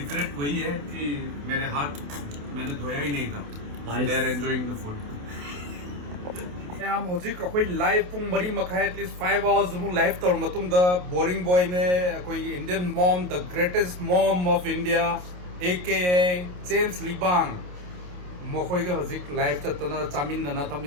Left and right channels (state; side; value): late; left; 28 ms